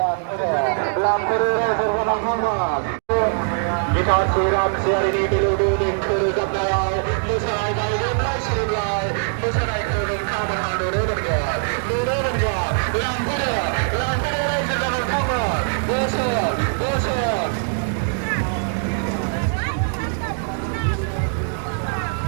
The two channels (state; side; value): silent; left; 64 dB below the other